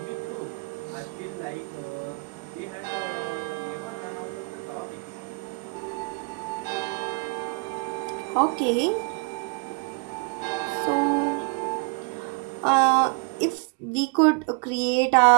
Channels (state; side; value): quieter; left; 30.9 dB